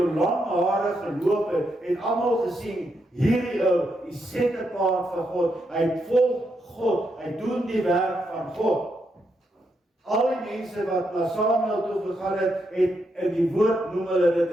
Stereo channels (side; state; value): both; normal; correlation 0.81